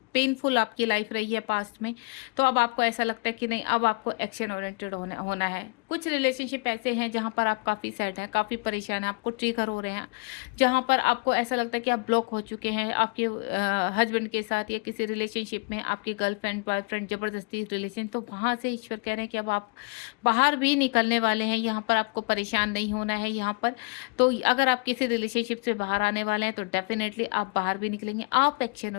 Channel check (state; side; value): quieter; right; 31.1 dB